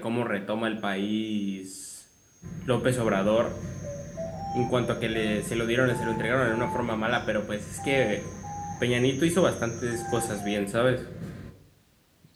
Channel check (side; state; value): both; identical; correlation 1.00